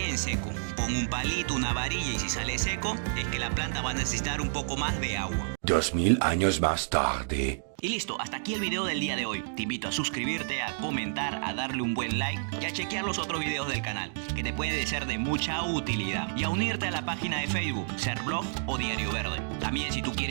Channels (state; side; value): silent; left; digital silence